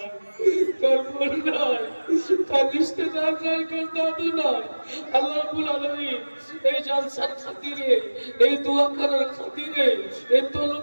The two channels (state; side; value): inverted; both; correlation -1.00